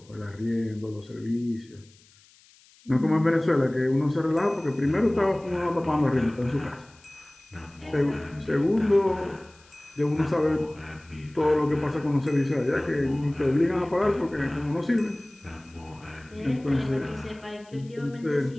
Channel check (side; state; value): left; noise; hiss, 28 dB below the sound